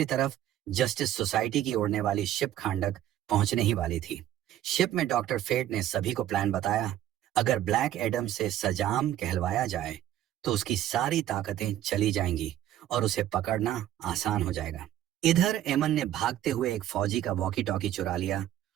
तरफ जस्टिस सोसाइटी की उड़ने वाली शिप खांडक पहुंचने ही वाली थी। शिप में डॉक्टर फेट ने सभी को प्लान बताया। अगर ब्लैक एडम से सजाम कहलवाया जाए तो उसकी सारी ताकतें चली जाएंगी और उसे पकड़ना आसान हो जाएगा। इधर एमन ने भागते हुए एक फौजी का वॉकी टॉकी चुरा लिया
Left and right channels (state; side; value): quieter; left; 12.4 dB